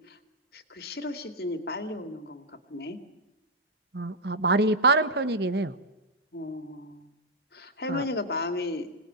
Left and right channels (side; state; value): both; normal; correlation -0.02